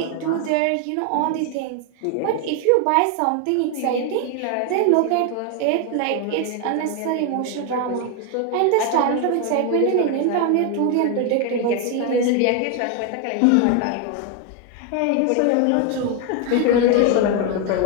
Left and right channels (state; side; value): different; both; correlation 0.01